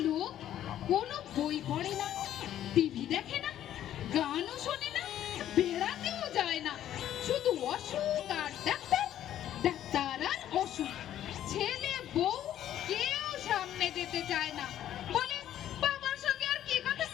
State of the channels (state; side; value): quieter; right; 11.6 dB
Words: লোক কোনো বই পড়ে না, টিভি দেখে না, গানও শোনে না, বেড়াতেও যায় না, শুধু অসুখ আর ডাক্তার, ডাক্তার আর অসুখ। ছেলে বউ কেউ সামনে যেতে চায় না, বলে বাবার সঙ্গে আর কি কথা